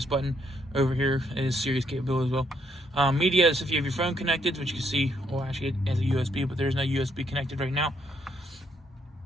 button over here. It is Sirius capable as well. Media is if you have your phone connected, which you can see, well, actually it has a USB, but there's no USB connected right now.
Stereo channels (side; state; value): both; normal; correlation 0.73